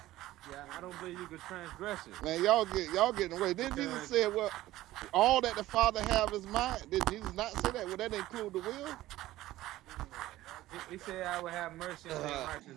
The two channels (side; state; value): left; quieter; 15.8 dB